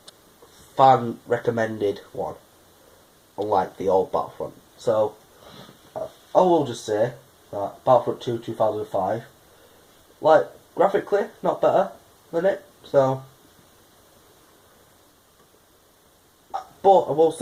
fan-recommended one, unlike the old Battlefront. So, I will just say that Battlefront 2 2005, like, graphically, not better than it, so... But I will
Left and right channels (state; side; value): identical; both; correlation 1.00